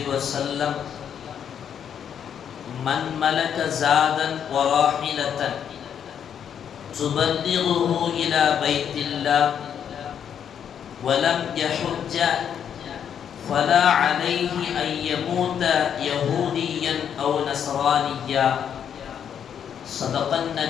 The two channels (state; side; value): quieter; right; 8.4 dB